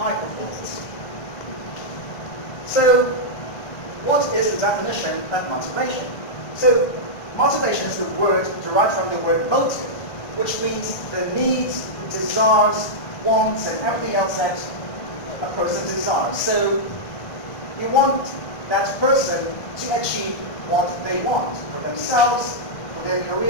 performance. So, what is the definition of motivation? So, motivation is the word derived from the word motive, which means the needs, desires, wants, and everything else that a person desires. So, you want that person to achieve what they want for themselves, for their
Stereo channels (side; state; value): right; late; 1.5 ms